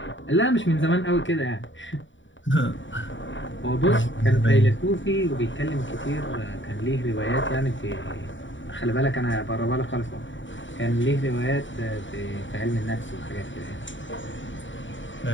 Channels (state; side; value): late; right; 0.55 ms